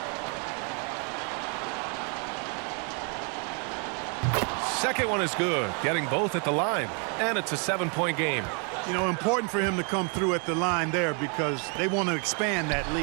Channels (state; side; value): quieter; left; 37.9 dB